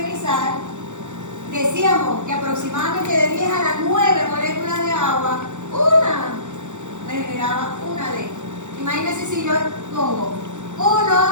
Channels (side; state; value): left; late; 0.85 ms